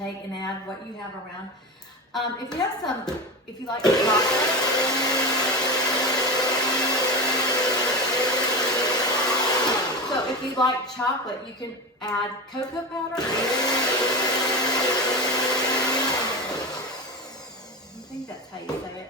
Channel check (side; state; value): both; normal; correlation 0.21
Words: and add what you have around. If you have some, if you like chocolate, so if you like chocolate, you can add cocoa powder. I think that's how you say it.